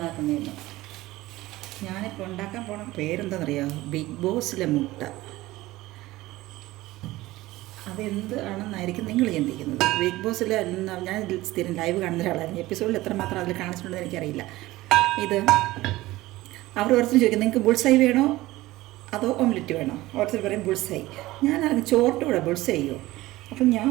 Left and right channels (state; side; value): quieter; left; 17.9 dB